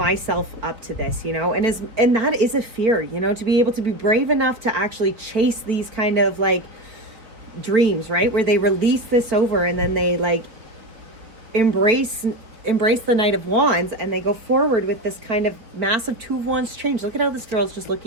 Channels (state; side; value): late; left; 4.5 ms